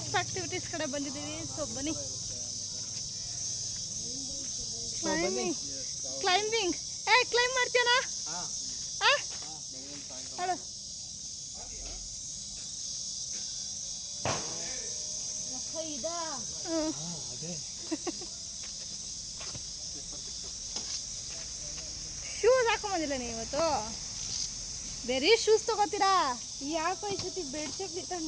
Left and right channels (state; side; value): identical; both; correlation 1.00